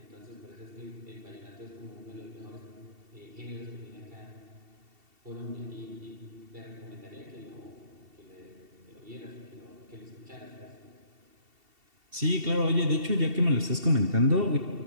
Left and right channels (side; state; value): left; late; 2.7 ms